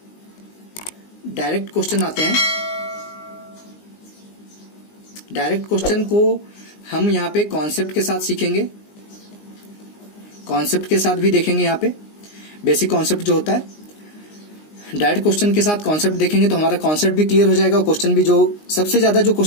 डायरेक्ट क्वेश्चन आते हैं। डायरेक्ट क्वेश्चन को हम यहाँ पे कॉन्सेप्ट के साथ सीखेंगे, कॉन्सेप्ट के साथ भी देखेंगे। यहाँ पे बेसिक कॉन्सेप्ट जो होता है, डायरेक्ट क्वेश्चन के साथ कॉन्सेप्ट देखेंगे तो हमारा कॉन्सेप्ट भी क्लियर हो जाएगा, और क्वेश्चन भी जो सबसे ज्यादा जो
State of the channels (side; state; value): right; late; 19 ms